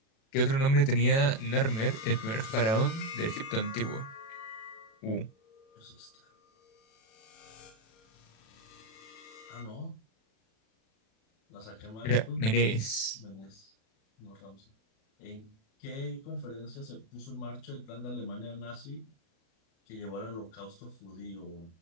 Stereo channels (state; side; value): late; right; 36 ms